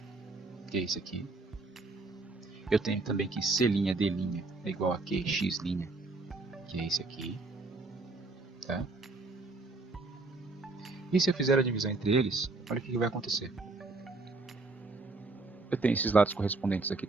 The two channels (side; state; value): left; quieter; 3.5 dB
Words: que é esse aqui. Eu tenho também que C', D' é igual a QX', que é esse aqui. Tá? E se eu fizer a divisão entre eles, olha o que vai acontecer. Eu tenho esses lados correspondentes aqui